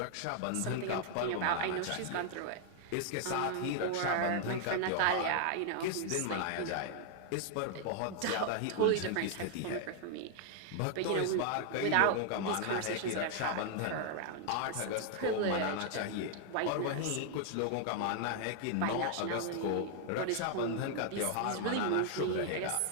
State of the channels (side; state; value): both; different; correlation 0.00